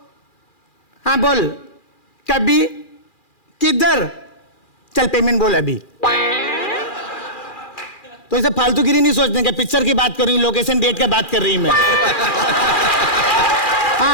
हाँ बोल। कभी किधर? चल पेमेंट बोल अभी। तो इसे फालतूगिरी नहीं सोचने का, पिक्चर की बात कर रही हूँ, लोकेशन डेट का बात कर रही हूँ मैं।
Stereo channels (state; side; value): late; right; 2.4 ms